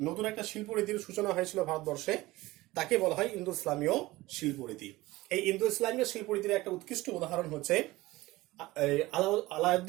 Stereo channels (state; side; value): quieter; left; 19.1 dB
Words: একটা শিল্পরীতির সূচনা হয়েছিল ভারতবর্ষে, তাকে বলা হয় ইন্দো ইসলামীয় শিল্পরীতি। এই ইন্দো ইসলামীয় শিল্পরীতির একটা উৎকৃষ্ট উদাহরণ হচ্ছে